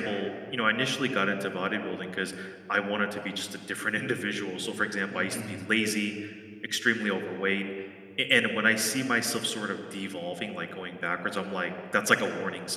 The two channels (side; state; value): both; identical; correlation 1.00